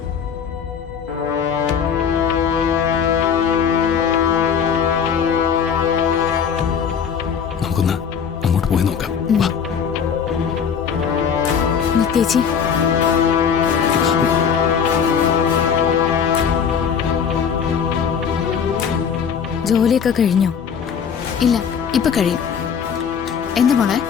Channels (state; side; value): quieter; right; 7.1 dB